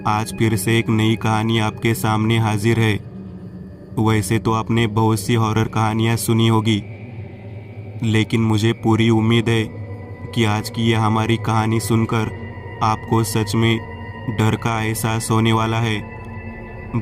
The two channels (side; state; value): both; identical; correlation 1.00